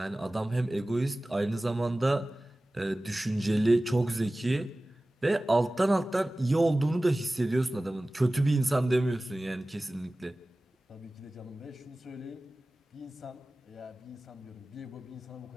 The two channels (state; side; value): normal; both; correlation 0.97